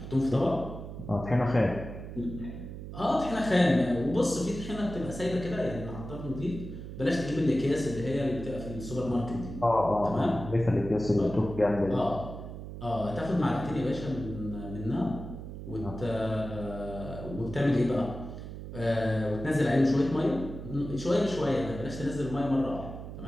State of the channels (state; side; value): noise; right; hum, 10 dB below the sound